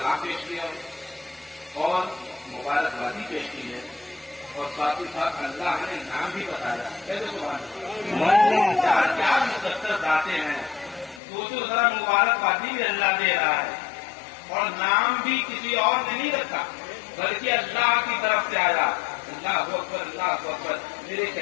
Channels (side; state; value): right; drops out; at 11.2 s